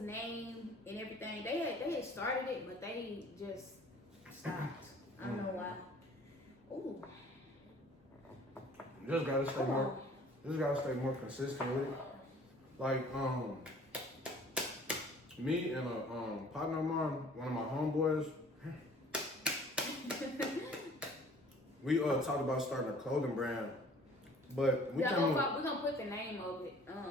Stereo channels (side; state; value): both; normal; correlation 0.52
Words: and everything. They had started it, but they just stopped. I don't know why. Ooh. Just gotta stay more. Just gotta stay more consistent with it. Like me and a partner of mine, one of my homeboys. We talked about starting a clothing brand, but we're gonna put the name of it,